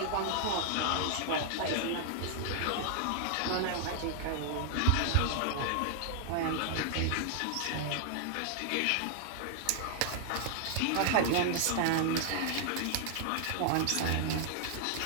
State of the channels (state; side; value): different; both; correlation 0.00